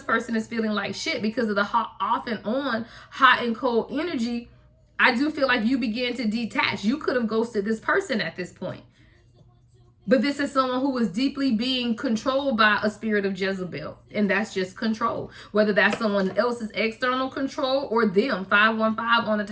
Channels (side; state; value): both; identical; correlation 1.00